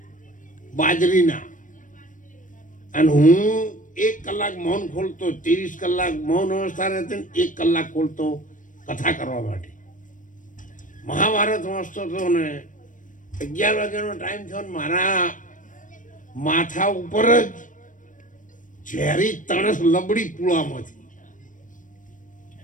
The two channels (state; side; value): late; right; 0.38 ms